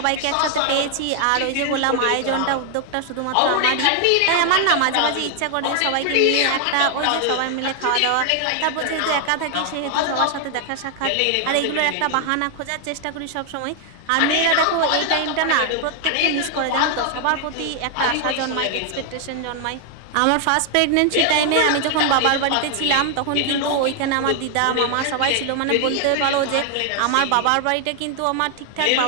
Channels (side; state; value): both; different; correlation 0.00